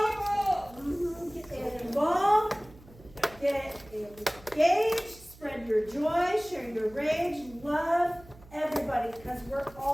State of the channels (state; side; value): noise; right; hum, 22 dB below the sound